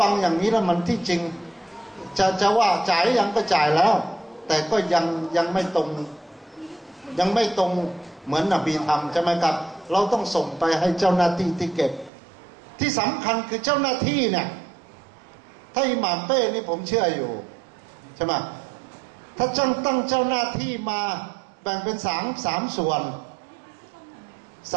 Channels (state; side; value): drops out; left; at 12.1 s